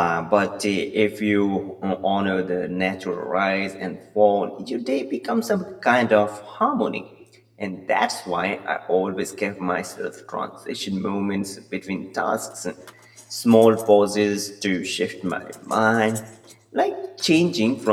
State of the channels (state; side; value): identical; both; correlation 1.00